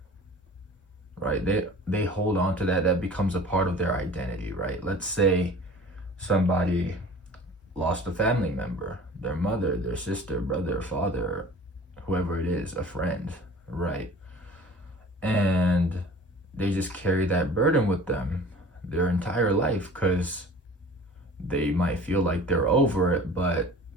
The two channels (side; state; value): both; normal; correlation 0.44